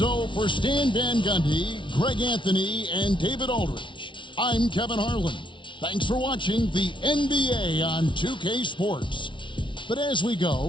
for Stan Van Gundy, Greg Anthony, and David Aldridge, I'm Kevin Harlan. Thanks for watching the NBA on 2K Sports. But as we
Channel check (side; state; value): right; late; 0.24 ms